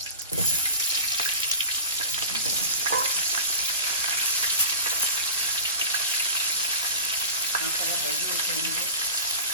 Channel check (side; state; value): both; inverted; correlation -0.34